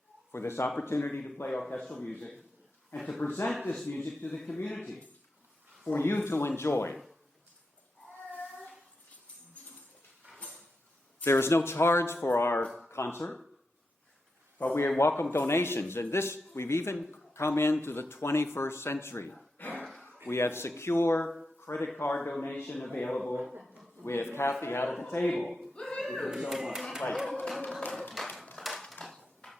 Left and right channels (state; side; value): normal; both; correlation 0.87